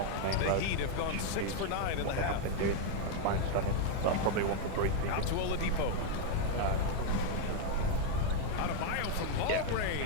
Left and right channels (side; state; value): both; different; correlation 0.00